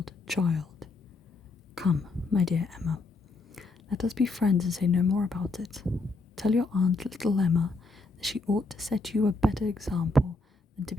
child. Come, my dear Emma, let us be friends and say no more about it. Tell your aunt, little Emma, that she ought to set you a better example than to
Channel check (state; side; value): quieter; right; 3.3 dB